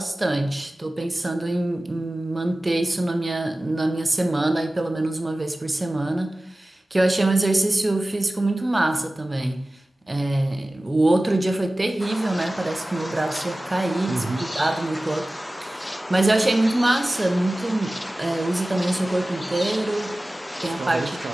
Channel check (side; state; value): both; normal; correlation 0.97